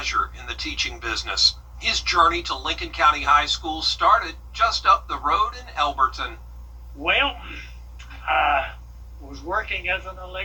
in the teaching business. His journey to Lincoln County High School started just up the road in Elberton. Well, I was working as an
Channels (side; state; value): both; identical; correlation 1.00